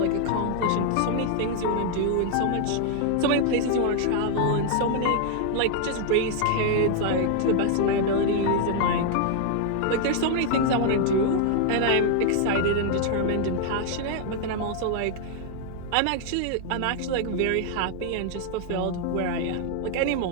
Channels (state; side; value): different; both; correlation 0.00